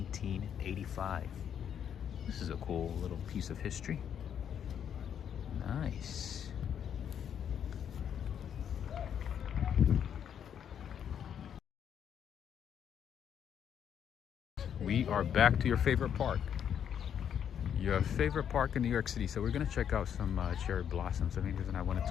This is a cool little piece of history. Nice. We are back to your favorite park. Your favorite park in New York City. So we're gonna check out some cherry blossoms. The main reason I wanted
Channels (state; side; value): quieter; right; 8.7 dB